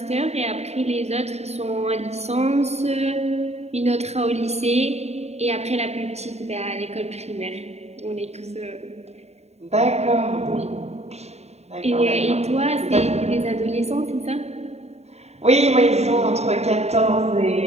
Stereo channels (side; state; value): left; late; 0.31 ms